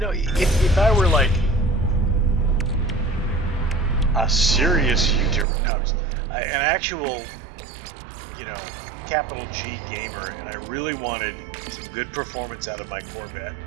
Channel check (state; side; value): drops out; left; at 5.5 s